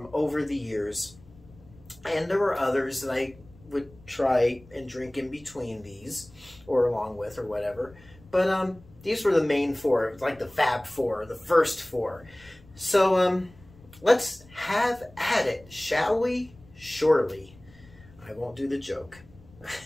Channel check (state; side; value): noise; left; rumble, 24 dB below the sound